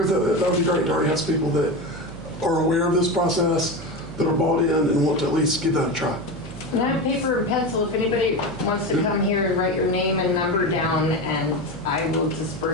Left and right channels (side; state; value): right; noise; hum, 15 dB below the sound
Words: that would be great to already have some people that are aware of this process, that are bought in and want to at least give that a try. And I have paper and pencil if anybody wants to come here and write your name and number down, and I will